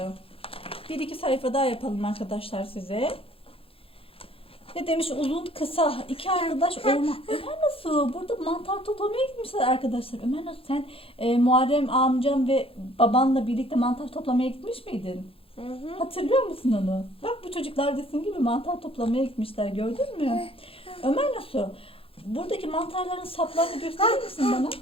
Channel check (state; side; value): late; right; 0.27 ms